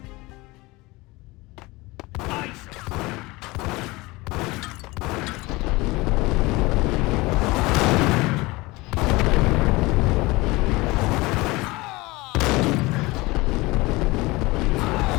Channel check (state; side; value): quieter; right; 22.3 dB